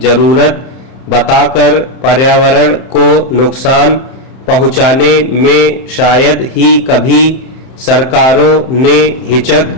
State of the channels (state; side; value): late; right; 31 ms